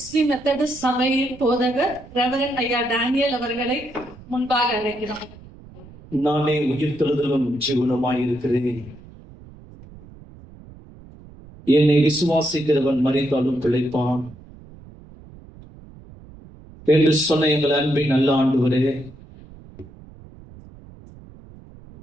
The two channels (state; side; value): noise; right; rumble, 20 dB below the sound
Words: மெத்தடிஸ்ட் சபையின் போதகர் ரெவரண்ட் ஐயா டேனியல் அவர்களை முன்பாக அழைக்கிறோம். நானே உயிர்த்தெழுதலும் ஜீவனுமாயிருக்கிறேன். என்னை விசுவாசிக்கிறவன் மரித்தாலும் பிழைப்பான் என்று சொன்ன எங்கள் அன்பின் நல்ல ஆண்டவரே,